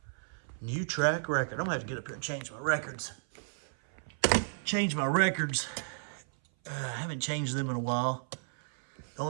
New track record. I'm going to have to get up here and change my records. I haven't changed them in a while. The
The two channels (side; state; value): left; silent; 56 dB below the other